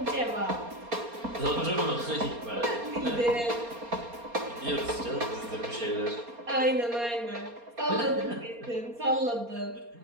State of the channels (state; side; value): late; left; 4.3 ms